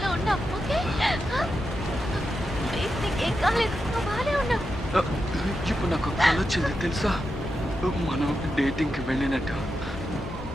ఉన్నావు. ఓకే ప్లీజ్, నీకేం కాలేదు, నువ్వు బాగానే ఉన్నావు. ఇప్పుడు నాకు కళ వచ్చింది తెలుసా? మనం డేటింగ్కి వెళ్ళినట్టు,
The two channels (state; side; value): normal; both; correlation 0.88